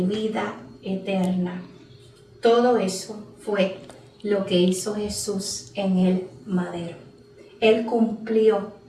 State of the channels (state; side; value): identical; both; correlation 1.00